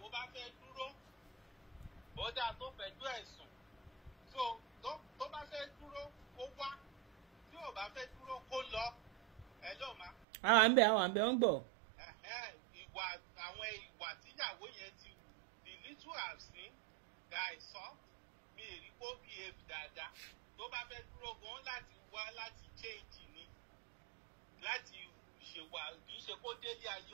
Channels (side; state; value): left; drops out; at 10.2 s